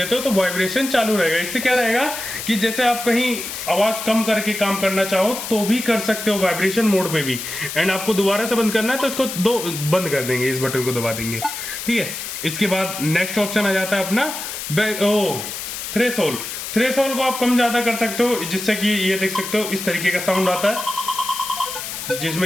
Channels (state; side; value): noise; left; hiss, 7 dB below the sound